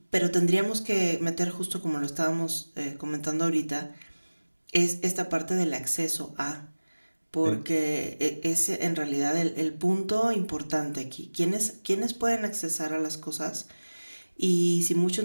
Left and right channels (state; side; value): inverted; both; correlation -1.00